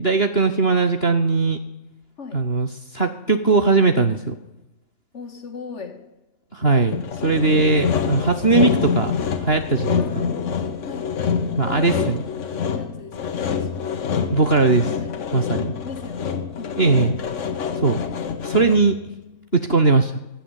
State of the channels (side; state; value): right; late; 2.9 ms